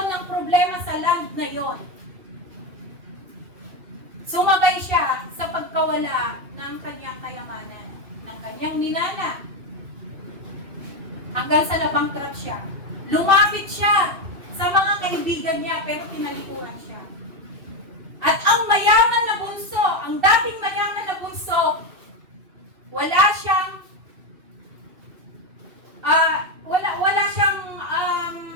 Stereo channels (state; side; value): late; left; 2.6 ms